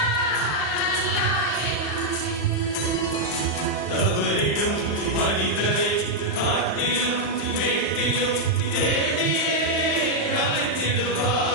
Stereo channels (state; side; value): late; right; 35 ms